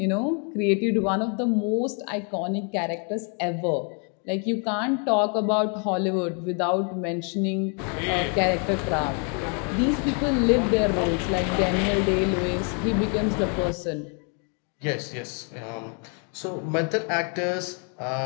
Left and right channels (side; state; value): right; quieter; 39.4 dB